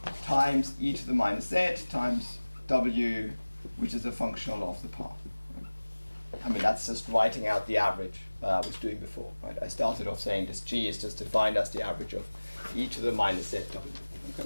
times e to the minus z times W, which is a functional of the path. Right? I mean, that's just writing out the average that I was doing before, right? I started off saying this G is just defined as the average of e to the minus z W.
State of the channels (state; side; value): inverted; both; correlation -1.00